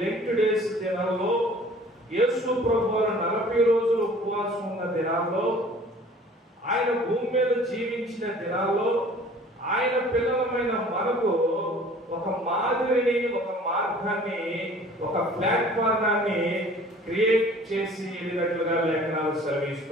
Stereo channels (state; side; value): normal; both; correlation 0.49